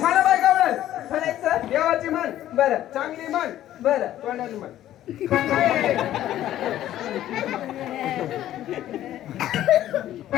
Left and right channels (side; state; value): right; quieter; 12.8 dB